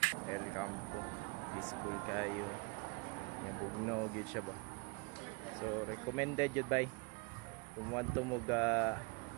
El Campo, peaceful kayo. Yung bugno gid siya ba. So recommended jud bay. Kung want to mo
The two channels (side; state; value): left; quieter; 31.2 dB